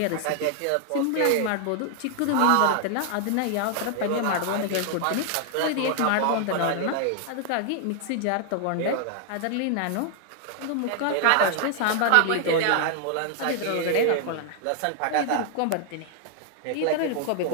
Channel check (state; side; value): different; both; correlation 0.00